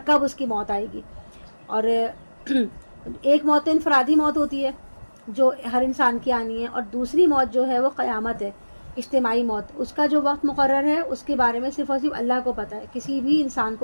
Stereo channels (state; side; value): inverted; both; correlation -1.00